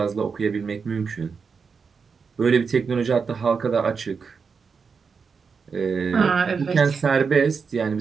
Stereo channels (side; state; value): left; quieter; 5.5 dB